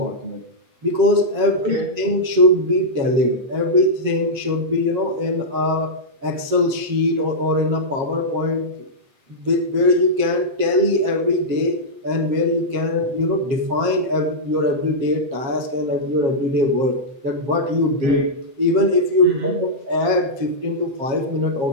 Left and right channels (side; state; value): left; late; 7.4 ms